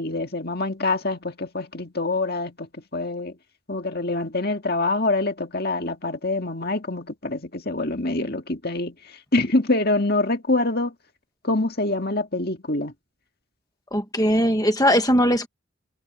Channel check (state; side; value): normal; both; correlation 0.27